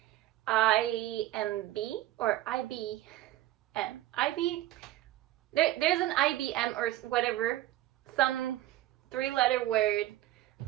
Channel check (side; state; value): left; quieter; 15.2 dB